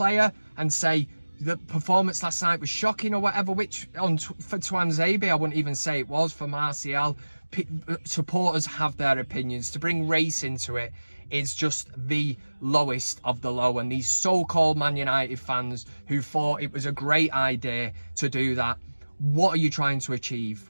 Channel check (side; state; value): both; inverted; correlation -1.00